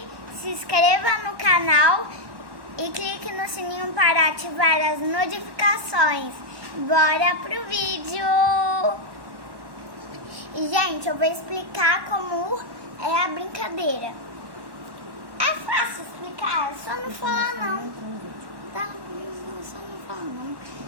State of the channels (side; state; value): left; late; 1.1 ms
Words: se inscreva no canal e clique no sininho para ativar as notificações. Bora pro vídeo! E, gente, eu vou explicar como é a brincadeira. É fácil explicar, é só não falar não. Tá? Só não falar não.